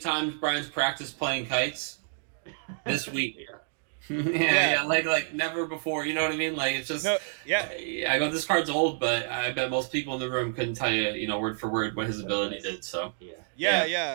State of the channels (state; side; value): silent; left; digital silence